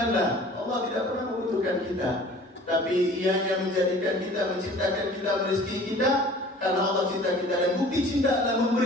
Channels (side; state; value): both; normal; correlation 0.47